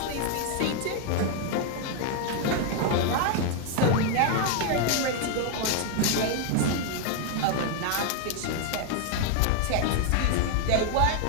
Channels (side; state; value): both; different; correlation 0.00